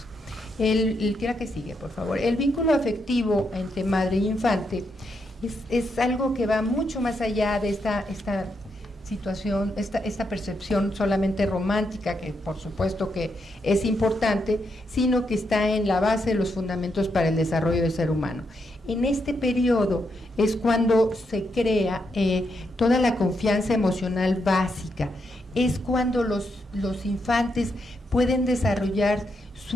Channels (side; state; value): both; normal; correlation 0.81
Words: ¿Qué que sigue, por favor? El vínculo afectivo entre madre y infante es algo que va mucho más allá de esta situación, esta percepción solamente romántica, que por supuesto que es importante, sino que está en la base de los fundamentos para el desarrollo del ser humano. En este periodo es cuando se crea toda la confianza emocional básica, es cuando los infantes pueden desarrollar